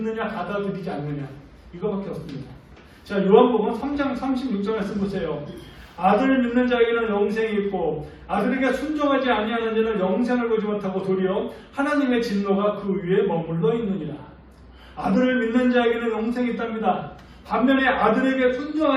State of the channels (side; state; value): both; identical; correlation 1.00